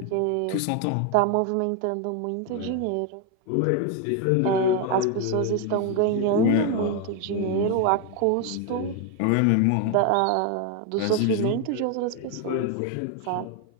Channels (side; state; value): both; different; correlation 0.01